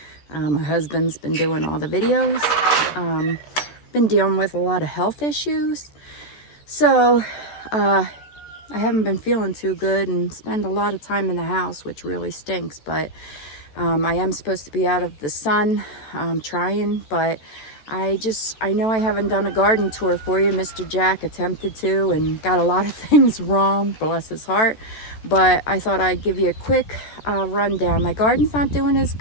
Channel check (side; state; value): right; late; 14 ms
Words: My husband's been doing all the videos. Been dealing with a lot of health issues. So I haven't been feeling too good and spend a lot of time in the house, which really stinks. But I am supposed to be out of the sun, trying, but I know I haven't done a garden tour for you. Mr. Jack attempted to and got a lot of things wrong, bless his heart. But I thought I'd give you a quick rundown. My garden's not doing as